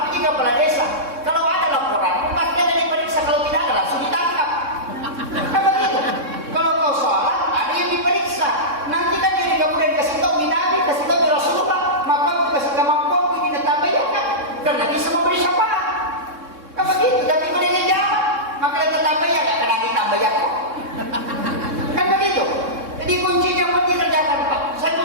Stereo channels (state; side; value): late; left; 3.6 ms